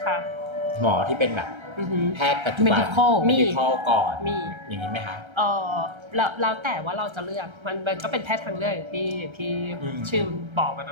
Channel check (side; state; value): left; late; 1.3 ms